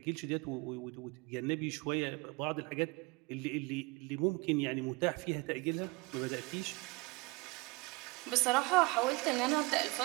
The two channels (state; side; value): quieter; left; 24.6 dB